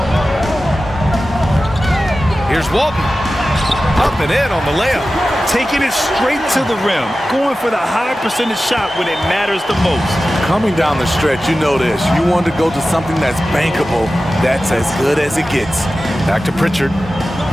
Here's Walton. Up and in on the layup. Taking it straight to the rim. Going for the high percentage shot when it matters the most. Coming down the stretch, you know this. You want to go to something that's bankable. That's as good as it gets. Back to Pritchard.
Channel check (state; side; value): normal; both; correlation 0.94